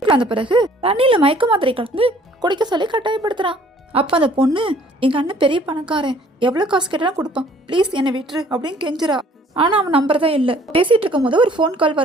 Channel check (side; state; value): both; normal; correlation 0.56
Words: அந்த பிறகு தண்ணியில மயக்க மாத்திரை கலந்து குடிக்க சொல்லி கட்டாயப்படுத்துறான். அப்ப அந்த பொண்ணு, எங்க அண்ணன் பெரிய பணக்காரன், எவ்வளவு காசு கேட்டாலும் கொடுப்பான், ப்ளீஸ் என்னை விட்டுரு அப்படின்னு கெஞ்சுறா. ஆனா அவன் நம்புறதா இல்ல. பேசிட்டு இருக்கும் போது ஒரு போன் கால்